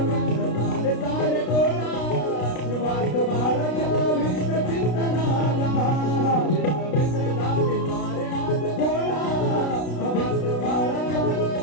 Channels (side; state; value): right; late; 33 ms